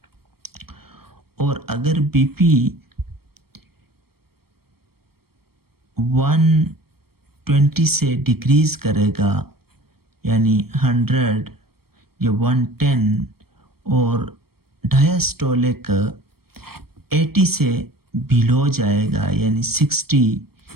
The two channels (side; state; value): left; late; 0.95 ms